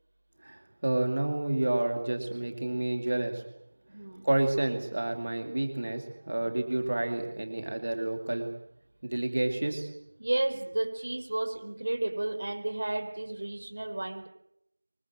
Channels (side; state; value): both; inverted; correlation -1.00